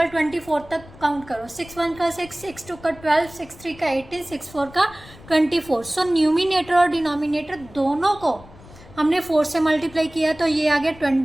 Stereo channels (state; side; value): noise; left; rumble, 21 dB below the sound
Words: 24 तक काउंट करो। 6 1 का 6, 6 2 का 12, 6 3 का 18, 6 4 का 24। सो न्यूमिनेटर और डिनोमिनेटर दोनों को हमने 4 से मल्टीप्लाई किया, तो ये आ गया